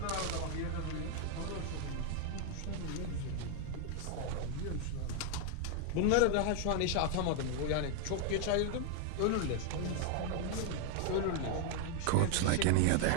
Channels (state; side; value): different; both; correlation 0.01